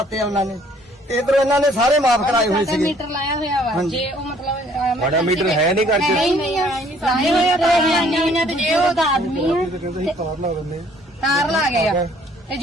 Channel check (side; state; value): both; normal; correlation 0.60